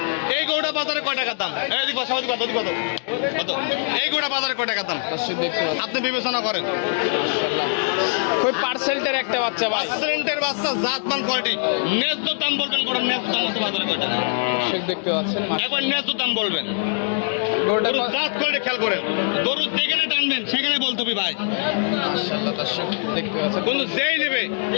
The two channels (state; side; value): silent; right; digital silence